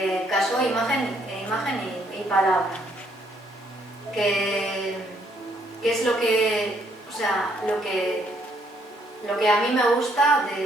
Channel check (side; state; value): both; normal; correlation 0.69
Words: casó imagen y palabra, que es lo que a mí me gusta